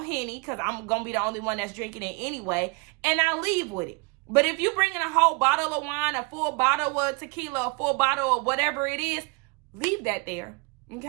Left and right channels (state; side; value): quieter; left; 30.9 dB